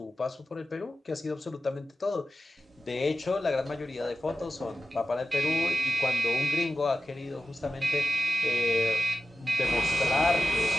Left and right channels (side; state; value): both; normal; correlation 0.93